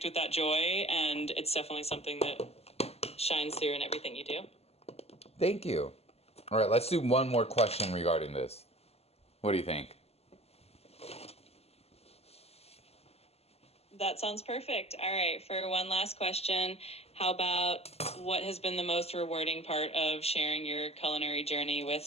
with that joy, and it's definitely something that shines through in everything you do. Thank you. All right, let's do one more question regarding this. What do you think? That sounds perfect. All right, for one last question, how about what has been the most rewarding part of sharing your culinary journey with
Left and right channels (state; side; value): late; right; 0.29 ms